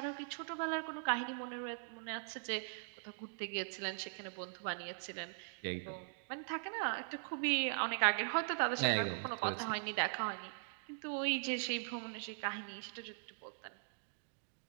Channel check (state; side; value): silent; left; digital silence